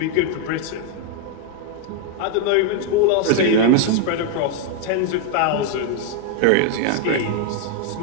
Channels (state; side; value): different; both; correlation 0.01